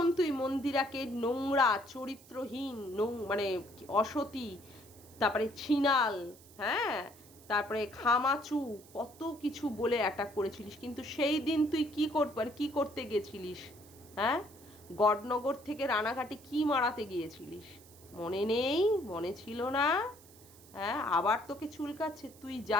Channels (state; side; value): noise; right; hiss, 23 dB below the sound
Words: তুই মন্দিরাকে নোংরা চরিত্রহীন মানে অসতী, তারপরে ছিনাল, হ্যাঁ তারপরে খামাচু কত কিছু বলে অ্যাটাক করেছিলিস। কিন্তু সেই দিন তুই কি করতে গেছিলিস, হ্যাঁ গডনগর থেকে রানাঘাটে কি মারাতে গিয়েছিলিস মনে নেই, মনে ছিল না? হ্যাঁ আবার তোকে চুলকাচ্ছে, তুই